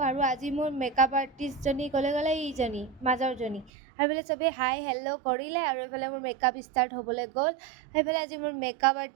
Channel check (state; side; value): drops out; left; at 3.7 s